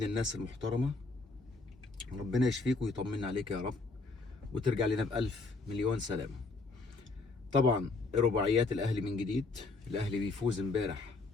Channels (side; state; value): right; quieter; 3.6 dB